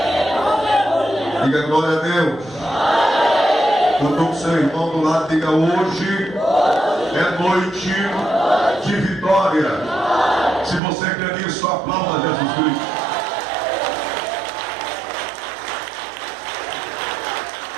Diga glória a Deus. Quando o seu irmão do lado diga: hoje é noite de vitória. Se você quer isso, aplauda Jesus Cristo.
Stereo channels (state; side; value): drops out; left; at 10.8 s